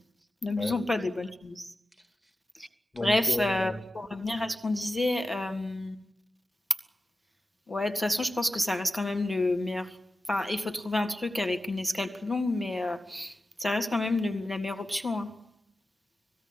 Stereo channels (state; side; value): normal; both; correlation 0.93